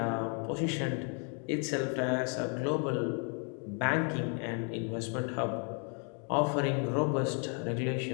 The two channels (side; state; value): right; quieter; 39.6 dB